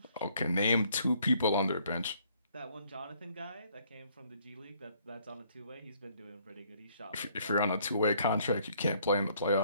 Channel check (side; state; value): both; inverted; correlation -0.65